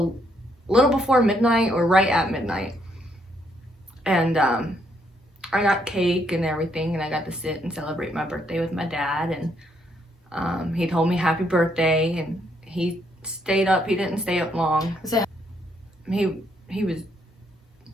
little before midnight, or right at midnight, and I got cake and everything, and I got to sit and celebrate my birthday with my dad, and he told me happy birthday, and he stayed up. He didn't stay up long. He was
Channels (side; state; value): both; normal; correlation 0.73